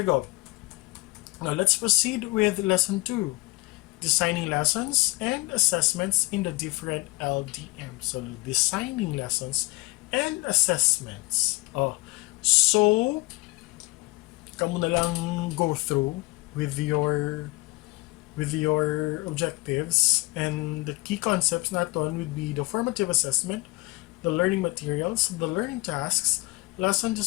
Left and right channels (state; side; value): quieter; right; 24.1 dB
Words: go. Now let's proceed with lesson 2, designing lessons and assessments in the different LDM. So designing lessons and assessments. So kamo na lang go through with your objectives, and the key concepts naton would be the formative assessment, the learning materials, the learning tasks, lesson